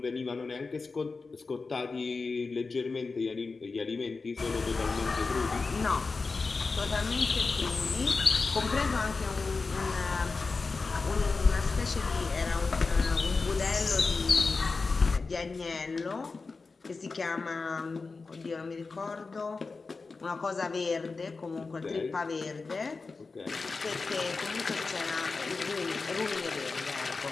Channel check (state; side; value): quieter; right; 4.2 dB